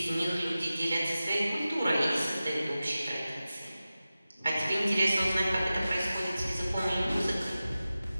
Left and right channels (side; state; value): both; inverted; correlation -0.95